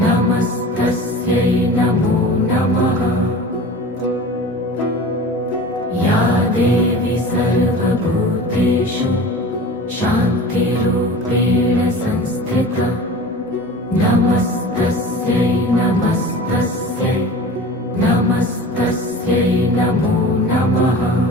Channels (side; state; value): both; normal; correlation 0.37